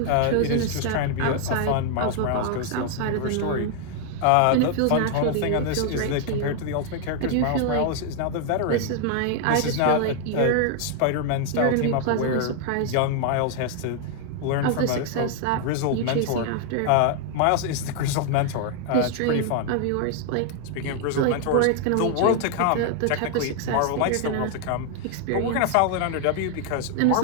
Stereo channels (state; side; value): different; both; correlation 0.00